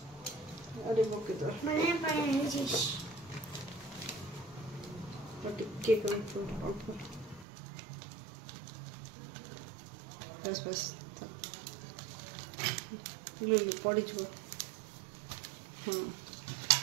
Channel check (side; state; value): left; drops out; at 7.5 s